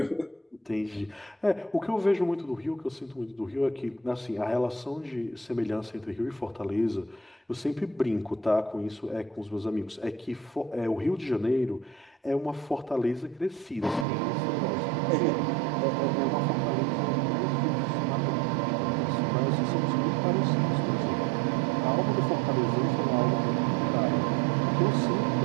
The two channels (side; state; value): left; drops out; at 14.1 s